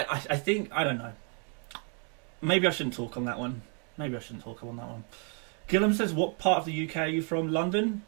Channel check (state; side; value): quieter; left; 37.3 dB